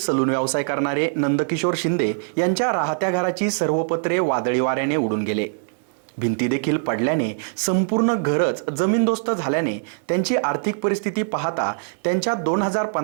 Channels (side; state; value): left; silent; digital silence